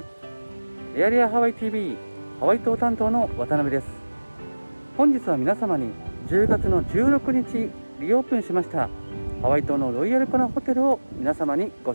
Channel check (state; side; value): inverted; both; correlation -1.00